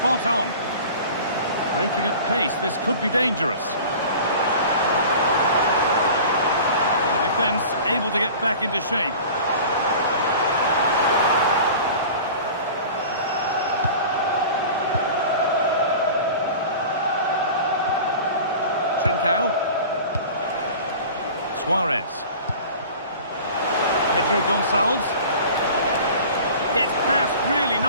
on. Breaking at pace, this could be dangerous. The defence able to get back into shape. Trincao. Suarez. Pedro Gonçalves. Gets past really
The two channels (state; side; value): inverted; both; correlation -0.40